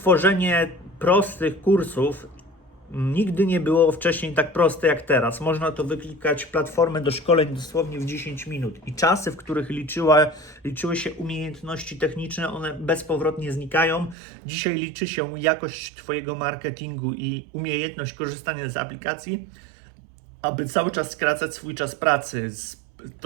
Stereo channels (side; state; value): left; drops out; at 14.2 s